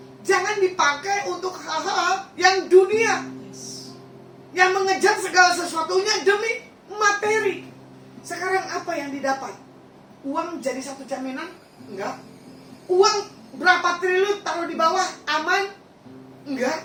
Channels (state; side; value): identical; both; correlation 1.00